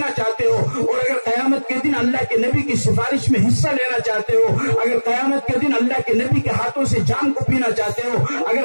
چاہتے ہو، اور اگر قیامت کے دن اللہ کے نبی کی سفارش میں حصہ لینا چاہتے ہو، اگر قیامت کے دن اللہ کے نبی کے ہاتھوں سے جام کو پینا چاہتے ہو، اگر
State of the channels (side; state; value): both; inverted; correlation -1.00